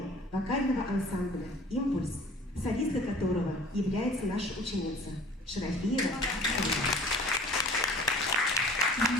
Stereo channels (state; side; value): normal; both; correlation 0.47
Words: вокального ансамбля «Импульс», солистка которого является наша ученица Шарафиева